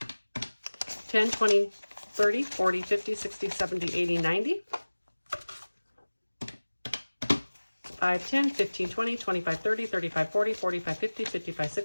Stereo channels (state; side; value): inverted; both; correlation -1.00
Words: 10, 20, 30, 40, 50, 60, 70, 80, 90. 5, 10, 15, 20, 25, 30, 35, 40, 45, 50, 55,